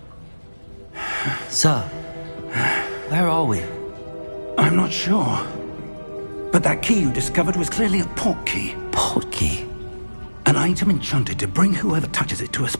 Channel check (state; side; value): inverted; both; correlation -1.00